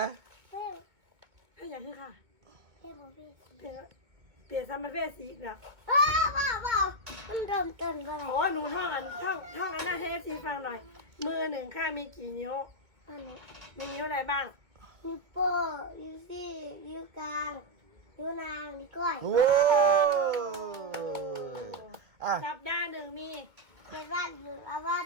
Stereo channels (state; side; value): late; left; 2.2 ms